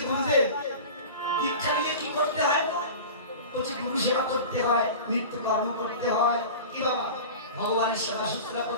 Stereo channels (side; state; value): both; inverted; correlation -0.34